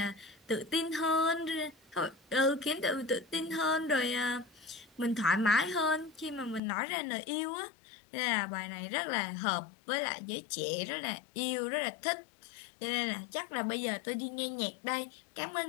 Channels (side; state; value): right; drops out; at 6.6 s